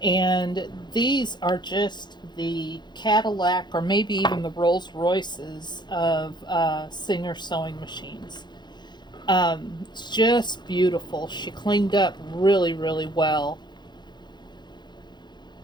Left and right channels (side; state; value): right; late; 0.21 ms